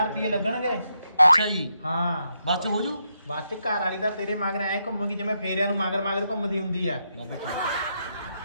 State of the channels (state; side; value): inverted; both; correlation -0.81